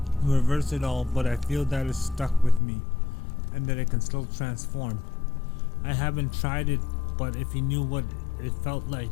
it all, but I feel that it's stuck with me and that I can still transform. I haven't tried it, but if you knew what it felt like,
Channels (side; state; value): right; drops out; at 2.6 s